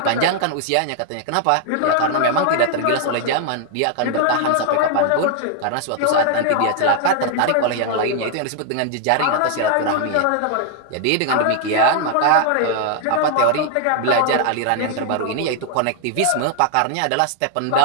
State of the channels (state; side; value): different; both; correlation 0.00